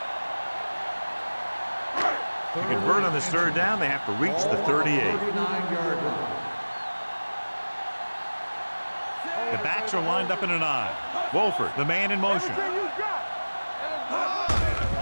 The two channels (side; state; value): both; inverted; correlation -1.00